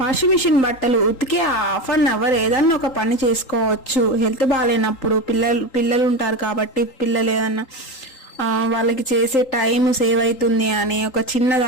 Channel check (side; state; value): right; late; 3.8 ms